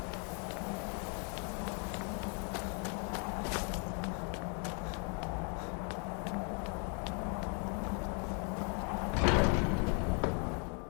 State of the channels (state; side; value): quieter; right; 38.4 dB